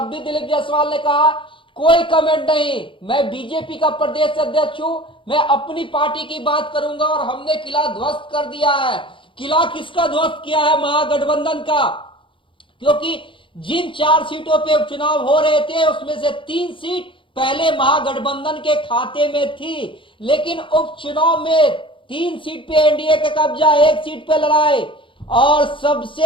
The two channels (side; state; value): right; late; 0.25 ms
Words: भी दिलीप जायसवाल ने कहा कोई कमेंट नहीं, मैं बीजेपी का प्रदेश अध्यक्ष हूं, मैं अपनी पार्टी की बात करूंगा, और हमने किला ध्वस्त कर दिया है। किला किसका ध्वस्त किया है? महागठबंधन का। क्योंकि जिन 4 सीटों पे उपचुनाव हो रहे थे, उसमें से 3 सीट पहले महागठबंधन के खाते में थी, लेकिन उपचुनाव में 3 सीट पे एनडीए का कब्जा, 1 सीट पे लड़ाई। और